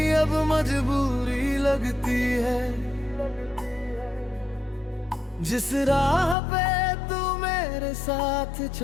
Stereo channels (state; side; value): drops out; right; at 6.4 s